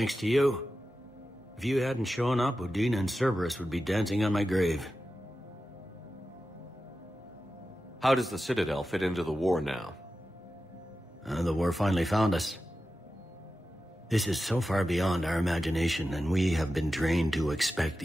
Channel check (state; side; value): normal; both; correlation 0.92